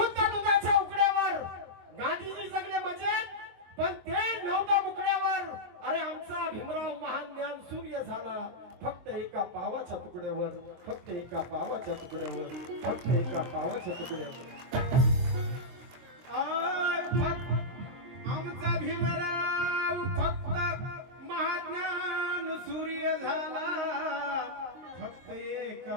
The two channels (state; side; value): late; left; 23 ms